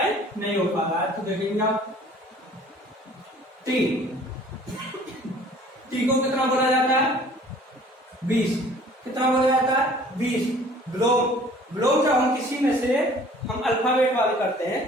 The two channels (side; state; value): both; normal; correlation 0.51